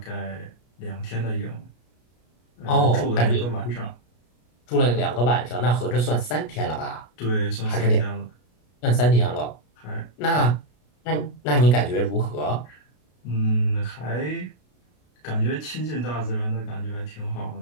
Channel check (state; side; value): late; right; 33 ms